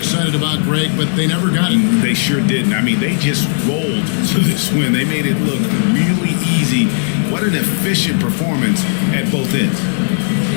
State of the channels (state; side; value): silent; right; digital silence